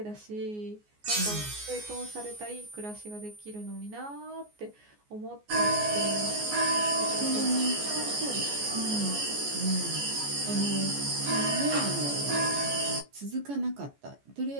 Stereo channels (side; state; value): left; late; 14 ms